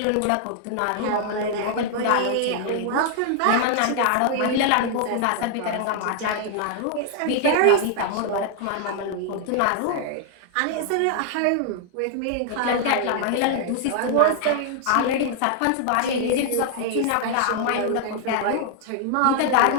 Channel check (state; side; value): different; both; correlation 0.00